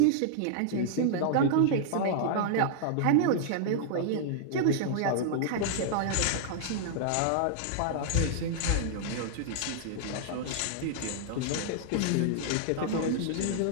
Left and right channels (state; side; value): different; both; correlation -0.01